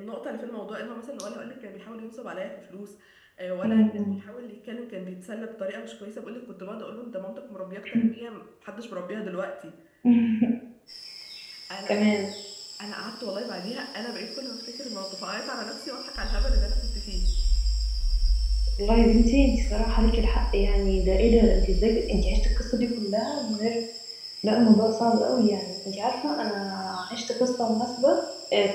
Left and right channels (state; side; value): identical; both; correlation 1.00